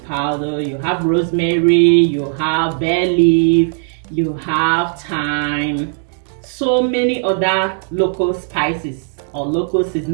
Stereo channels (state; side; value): silent; left; 68 dB below the other